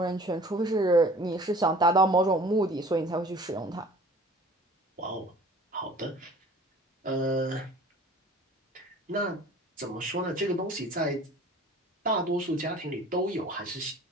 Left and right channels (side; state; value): both; normal; correlation 0.47